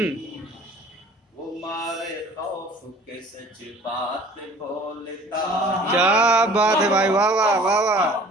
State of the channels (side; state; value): both; normal; correlation 0.49